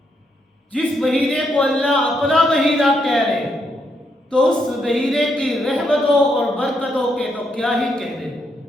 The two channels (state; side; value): normal; both; correlation 0.78